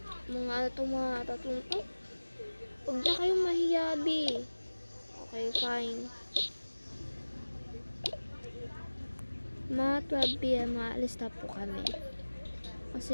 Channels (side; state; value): both; inverted; correlation -1.00